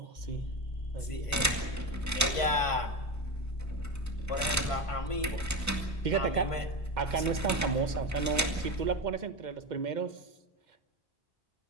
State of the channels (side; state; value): both; normal; correlation 0.20